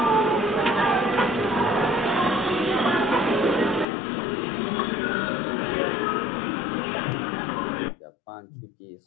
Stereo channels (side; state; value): right; drops out; at 3.9 s